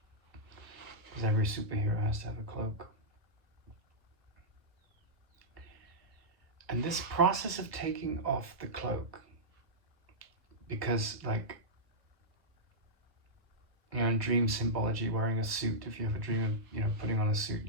because every superhero has to have a cloak. And this process of taking off the cloak, because in dream symbology, wearing a suit, if you have a dream of putting on a suit,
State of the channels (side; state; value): left; late; 1.1 ms